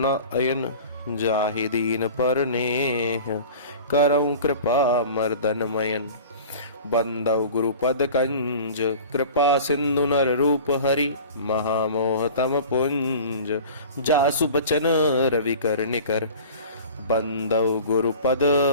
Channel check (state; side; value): inverted; both; correlation -0.40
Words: अयन। जाहि दीन पर नेह करऊं कृपा मर्दन मयन। बंदौ गुरुपद कंज कृपा सिंधु नर रूप हरि। महामोह तम पुंज जासु बचन रवि कर निकर। बंदौ गुरुपद